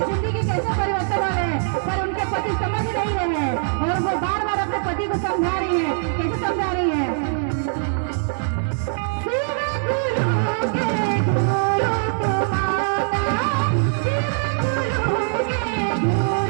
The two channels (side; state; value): left; silent; digital silence